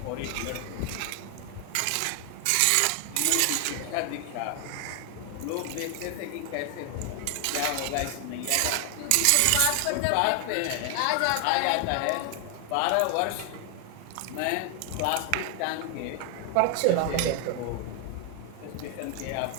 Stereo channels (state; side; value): different; both; correlation 0.00